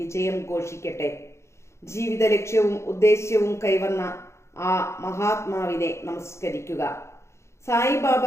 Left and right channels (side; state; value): right; late; 0.13 ms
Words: ഘോഷിക്കട്ടെ. ജീവിത ലക്ഷ്യവും ഉദ്ദേശ്യവും കൈവന്ന ആ മഹാത്മാവിനെ നമസ്കരിക്കുക. സായിബാബ